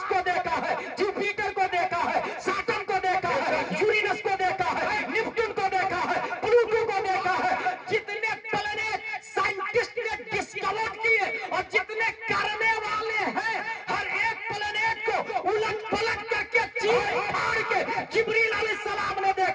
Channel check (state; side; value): identical; both; correlation 1.00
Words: کو دیکھا ہے, جوپیٹر کو دیکھا ہے, سیٹرن کو دیکھا ہے, یورینس کو دیکھا ہے, نیپٹون کو دیکھا ہے, پلوٹو کو دیکھا ہے. جتنے پلانیٹ سائنٹسٹ نے ڈسکور کیے اور جتنے کرنے والے ہیں, ہر ایک پلانیٹ کو الٹ پلٹ کر کے چیر پھاڑ کے جبریل علیہ السلام نے